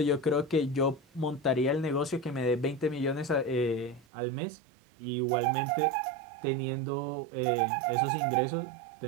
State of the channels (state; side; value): drops out; left; at 4.0 s